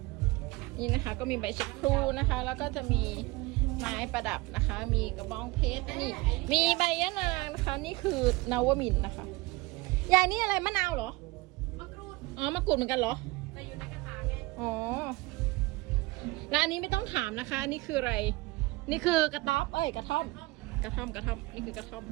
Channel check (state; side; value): quieter; left; 22.3 dB